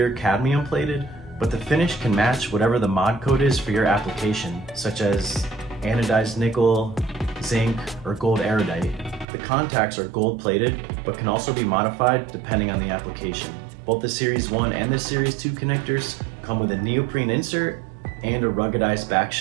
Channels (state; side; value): drops out; left; at 9.2 s